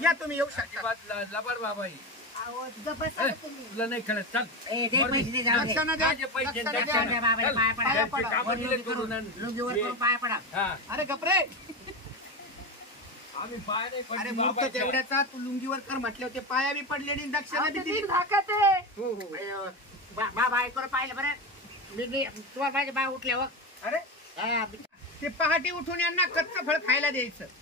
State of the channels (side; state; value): both; normal; correlation 0.19